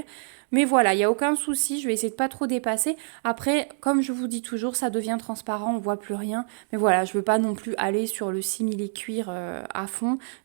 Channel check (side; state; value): left; silent; digital silence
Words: Mais voilà, il n'y a aucun souci, je vais essayer de pas trop dépasser. Après, comme je vous dis toujours, ça devient transparent, on voit plus rien. Mais voilà, je veux pas non plus aller sur le simili-cuir à fond.